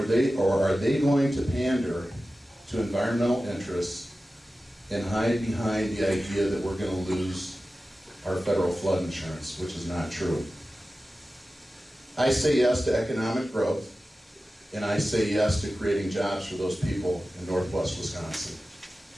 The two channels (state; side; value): normal; both; correlation 0.95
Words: are they going to pander to environmental interests and hide behind the idea that we're going to lose our federal flood insurance, which is not true. I say yes to economic growth, and I say yes to creating jobs for those people in northwest Wisconsin.